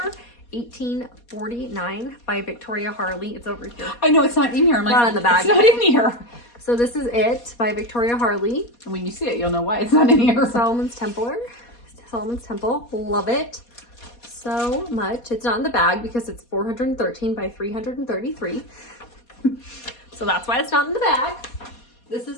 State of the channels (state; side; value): late; right; 4.2 ms